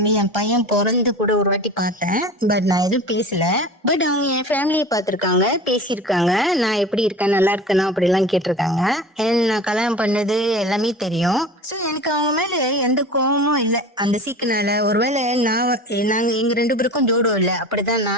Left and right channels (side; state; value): both; normal; correlation 0.36